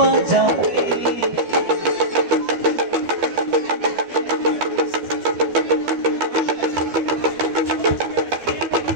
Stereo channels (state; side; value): late; left; 12 ms